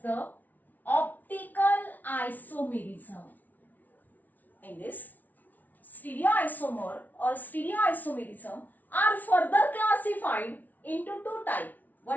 optical isomerism. In this, stereoisomer or stereoisomerism are further classified into two types.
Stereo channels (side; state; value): right; late; 0.079 ms